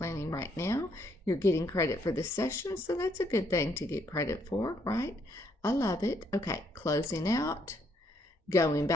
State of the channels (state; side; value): normal; both; correlation 0.71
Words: right now. You're getting credit for this session, so that's a good thing to get credit for, right? I love it. Okay, closing out, going